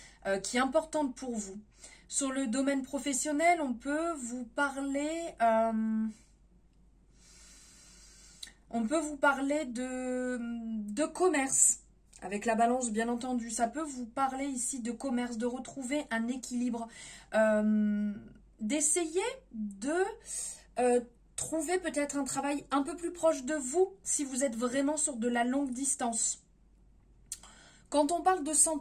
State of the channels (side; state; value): both; identical; correlation 1.00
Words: qui est importante pour vous. Sur le domaine professionnel, on peut vous parler... de commerce. Avec la balance, bien entendu. Ça peut vous parler ici de commerce, de retrouver un équilibre. D'essayer de trouver peut-être un travail un peu plus proche de vous si vous êtes vraiment sur de la longue distance. Quand on parle de